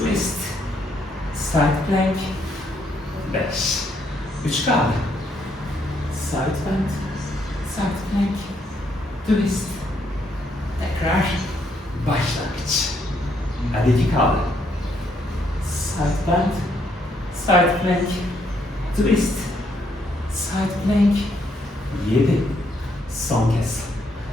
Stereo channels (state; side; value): normal; both; correlation 0.73